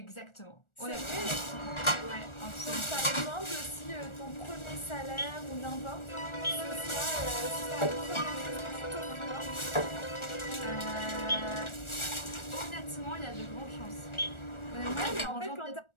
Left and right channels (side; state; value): right; late; 1.4 ms